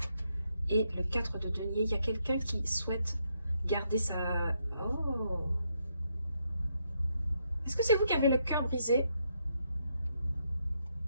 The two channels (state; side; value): inverted; both; correlation -0.78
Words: Et le 4 de denier, il y a quelqu'un qui souhaite garder sa... Oh! Est-ce que c'est vous qui avez le cœur brisé?